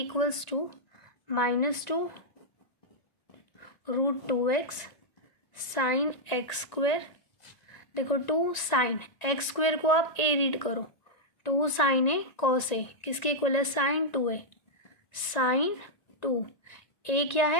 to -2 √2x sine x square, देखो 2 साइन एक्स स्क्वायर को आप a रीड करो, 2 साइन ए cos ए, किसके इक्वल है, साइन 2a, साइन 2 a क्या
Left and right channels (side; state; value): right; late; 1.9 ms